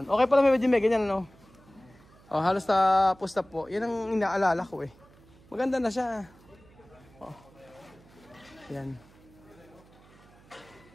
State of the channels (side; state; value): right; noise; hum, 26 dB below the sound